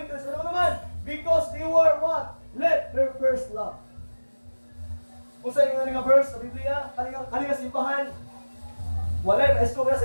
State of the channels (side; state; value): both; inverted; correlation -1.00